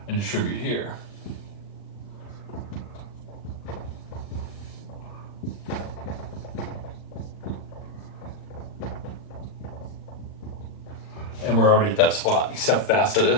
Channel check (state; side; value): late; right; 40 ms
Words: and distribute here. And we're already at that spot. You see how fast it